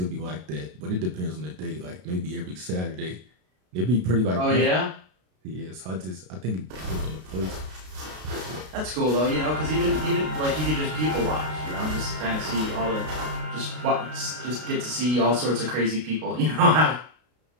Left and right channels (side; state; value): left; late; 33 ms